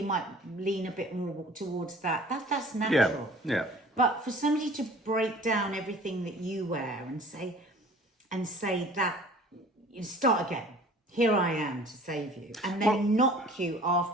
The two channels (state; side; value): normal; both; correlation 0.48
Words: might lean a bit more towards that. That's natural. Yeah. But for somebody to break down everything that you wear and say that, you start again. Here I am to save you, and then knock you